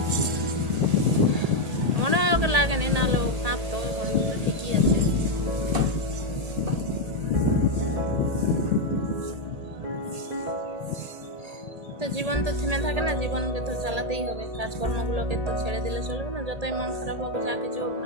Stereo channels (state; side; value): late; left; 1.8 ms